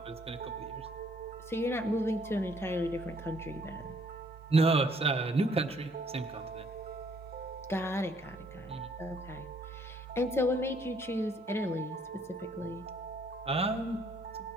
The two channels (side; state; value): both; normal; correlation 0.64